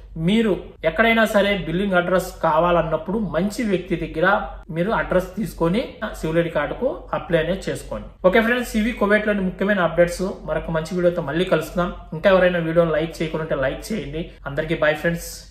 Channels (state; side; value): identical; both; correlation 1.00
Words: మీరు ఎక్కడైనా సరే బిల్లింగ్ అడ్రస్ కావాలన్నప్పుడు మంచి వ్యక్తి దగ్గర మీరు అడ్రస్ తీసుకొని సివిల్ ఐడి కార్డుకు అప్లై అనేది చేసుకోండి. ఓకే ఫ్రెండ్స్, ఇవి కువైట్ లోని ముఖ్యమైన అప్డేట్స్. మరొక మంచి వీడియోతో మళ్ళీ కలుస్తున్నాం. ఇంకా ఎవరైనా వీడియోని లైక్ చేయకుండా లైక్ చేయండి. అందరికీ బై ఫ్రెండ్స్,